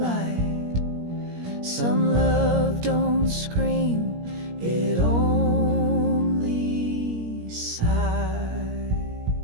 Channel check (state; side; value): late; left; 17 ms